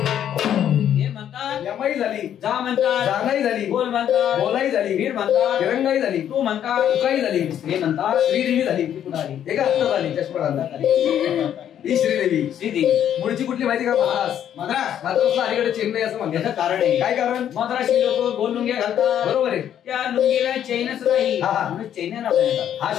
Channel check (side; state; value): right; quieter; 10.1 dB